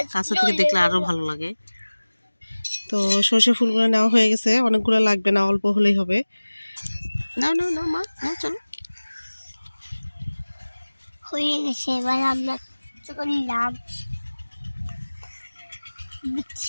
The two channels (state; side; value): inverted; both; correlation -1.00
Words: কাছে থেকে দেখলে আরো ভালো লাগে। তো সরিষা ফুলগুলো নেওয়া হয়ে গেছে, অনেকগুলো লাগবে না, অল্প হলেই হবে। না না না মা, না চলো। হয়ে গেছে, এবার আমরা করলাম